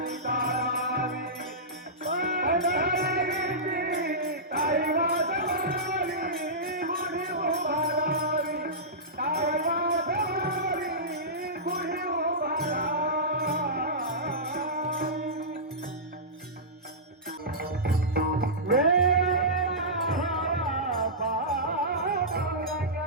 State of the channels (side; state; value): both; normal; correlation -0.16